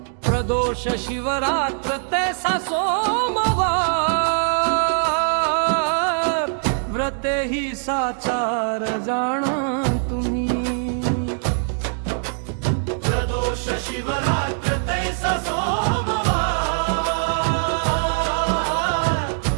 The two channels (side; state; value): left; silent; digital silence